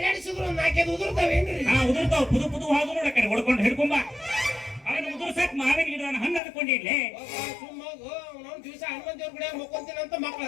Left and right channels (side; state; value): right; drops out; at 6.4 s